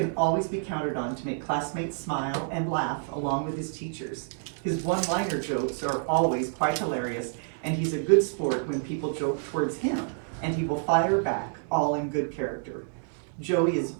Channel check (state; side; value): silent; left; 59 dB below the other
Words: always be counted on to make classmates smile and laugh along with his teachers. His one-liner jokes are always quite hilarious, and he's a good sport when people joke towards him, and he will fire back, all in good character. Joey is